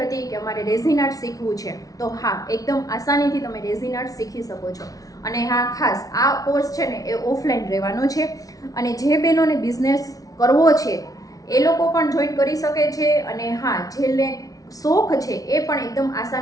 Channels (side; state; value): right; late; 0.18 ms